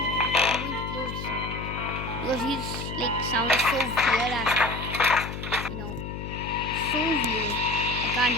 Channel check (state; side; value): noise; left; hum, 7 dB below the sound